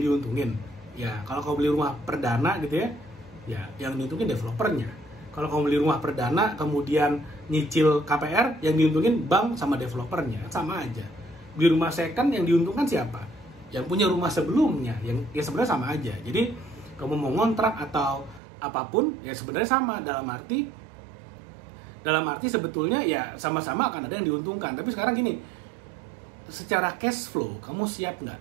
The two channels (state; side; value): drops out; left; at 18.4 s